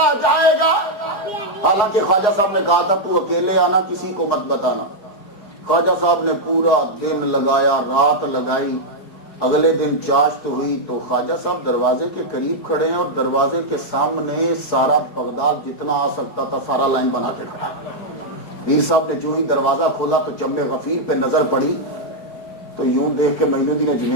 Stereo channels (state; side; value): late; right; 4.8 ms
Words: جائے گا. حالانکہ خواجہ صاحب نے کہا تھا تو اکیلے آنا, کسی کو مت بتانا. خواجہ صاحب نے پورا دن لگایا, رات لگائی. اگلے دن چاشت ہوئی تو خواجہ صاحب دروازے کے قریب کھڑے ہیں اور دروازے کے سامنے سارا بغداد جتنا آ سکتا تھا سارا لائن بنا کے کھڑا. پیر صاحب نے جو ہی دروازہ کھولا تو جم غفیر پہ نظر پڑی تو یوں دیکھ کے معین الدین